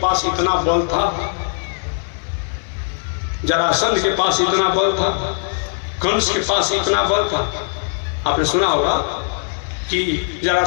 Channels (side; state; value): right; silent; digital silence